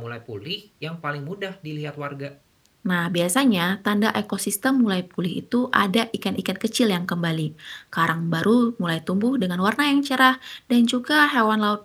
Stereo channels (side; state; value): both; identical; correlation 1.00